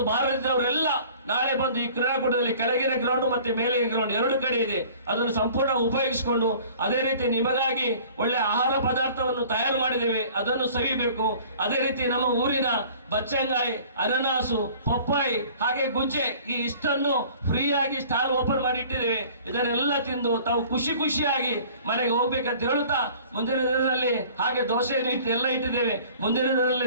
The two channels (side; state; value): both; inverted; correlation -0.49